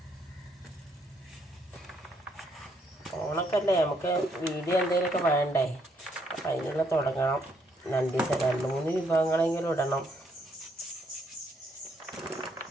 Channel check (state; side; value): normal; both; correlation 0.72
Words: ഓണക്കല്ലേ, നമുക്ക് വീഡിയോ എന്തെങ്കിലുമൊക്കെ വേണ്ടേ? അപ്പം അതിനുള്ള തുടങ്ങണം. 2-3 വിഭവങ്ങളെങ്കിലും ഇടണം.